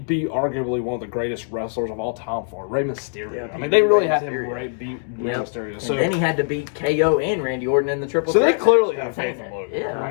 arguably one of the greatest wrestlers of all time for it, Rey Mysterio. Yeah, I mean, they really Rey had him Mysterio. beat Rey Yep. Mysterio. And So, then he had to beat KO and Randy Orton in the triple So they threat. clearly have faith in Logan. Yeah, I mean,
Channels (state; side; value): silent; right; digital silence